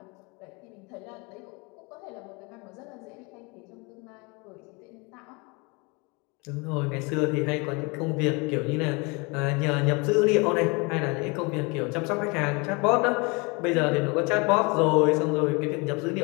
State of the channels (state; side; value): quieter; right; 28.8 dB